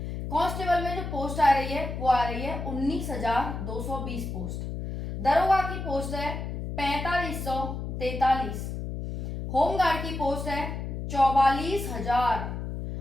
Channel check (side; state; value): left; noise; hum, 5 dB below the sound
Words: कांस्टेबल में जो पोस्ट आ रही है वो आ रही है 19,220 पोस्ट। दरोगा की पोस्ट है 4543। होमगार्ड की पोस्ट है 44,000